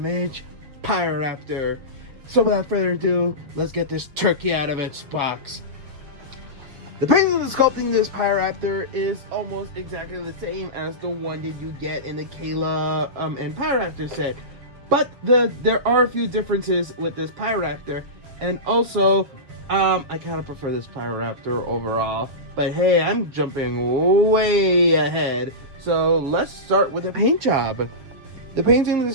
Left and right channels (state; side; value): late; left; 7.5 ms